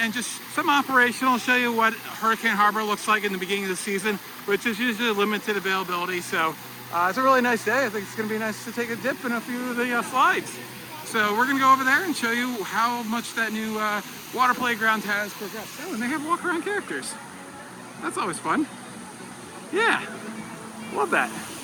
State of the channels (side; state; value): both; identical; correlation 1.00